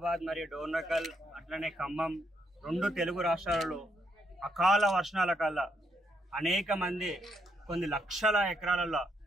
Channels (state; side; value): normal; both; correlation 0.76